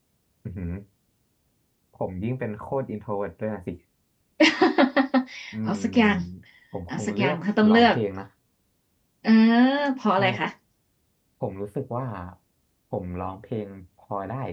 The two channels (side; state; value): both; identical; correlation 1.00